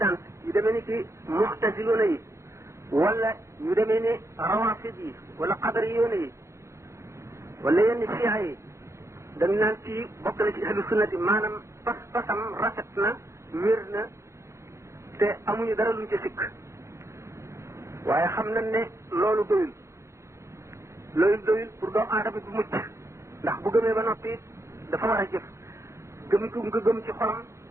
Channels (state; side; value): late; left; 0.14 ms